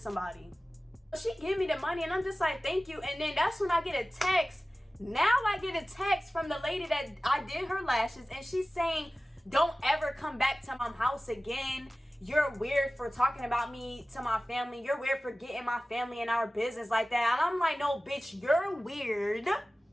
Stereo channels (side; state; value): both; normal; correlation 0.97